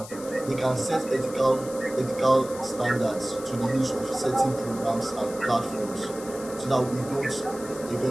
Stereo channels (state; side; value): noise; left; hiss, 15 dB below the sound